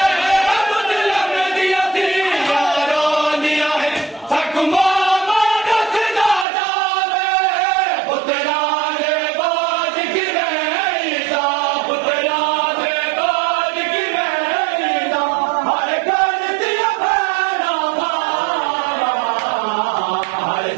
मुसलम दिया यारो दिया हकुमा बादत ना जावे पुतरा दे बाज की रहता पुतरा दे बाज की रहता हर कर दिया भैरा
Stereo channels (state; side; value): drops out; left; at 6.5 s